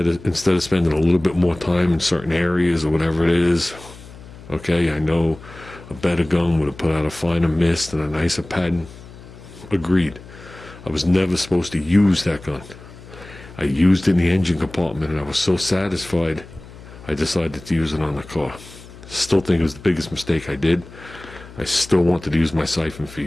of spending a little bit more time in certain areas or whatever it is, okay, I know a better gun would have put out a finer mist and a nicer pattern. Agreed. I was never supposed to use that gun. I used it in the engine compartment and I was so satisfied I decided to use it on the car. Still think it was the biggest mistake I did. I still wanted to use my siphon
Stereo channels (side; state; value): left; noise; hum, 18 dB below the sound